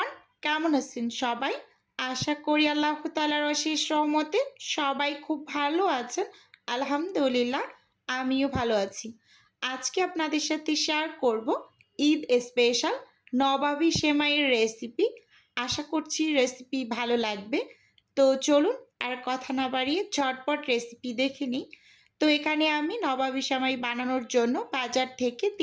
কেমন আছেন সবাই? আশা করি আল্লাহ তাআলার অশেষ রহমতে সবাই খুব ভালো আছেন। আলহামদুলিল্লাহ, আমিও ভালো আছি। আজকে আপনাদের সাথে শেয়ার করব ঈদ স্পেশাল নবাবী সেমাইয়ের রেসিপি। আশা করছি রেসিপি ভালো লাগবে। তো চলুন আর কথা না বাড়িয়ে ঝটপট রেসিপি দেখে নিই। তো এখানে আমি নবাবী সেমাই বানানোর জন্য বাজার থেকে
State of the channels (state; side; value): identical; both; correlation 1.00